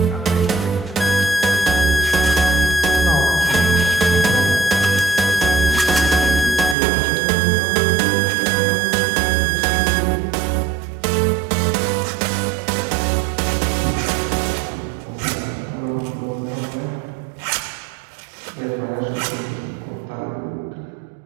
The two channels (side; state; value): left; drops out; at 6.8 s